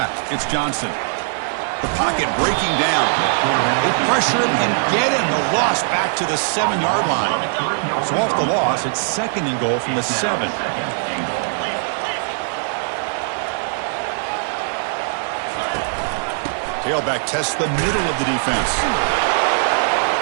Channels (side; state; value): left; silent; digital silence